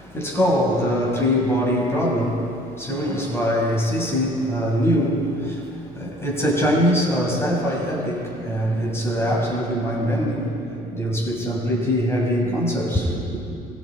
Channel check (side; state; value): both; normal; correlation 0.55